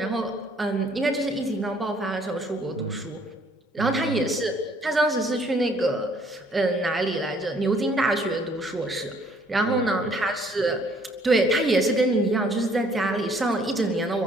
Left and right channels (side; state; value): both; normal; correlation 0.62